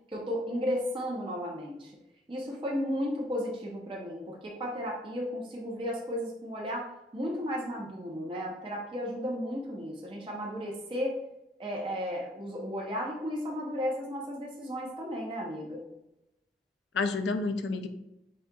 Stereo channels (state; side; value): normal; both; correlation 0.59